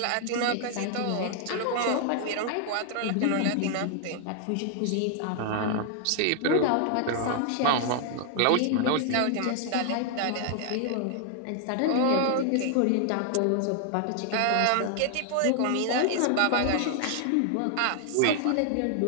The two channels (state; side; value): different; both; correlation 0.00